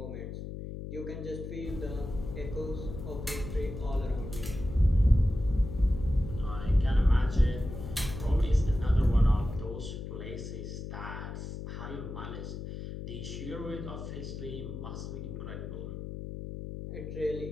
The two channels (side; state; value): left; noise; hum, 8 dB below the sound